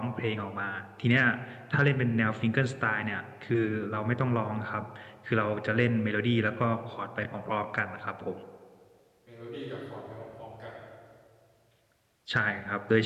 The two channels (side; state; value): both; identical; correlation 1.00